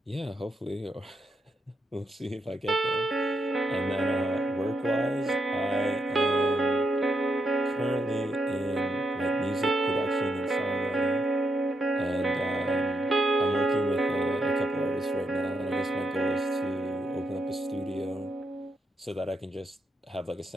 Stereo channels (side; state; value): both; normal; correlation 0.81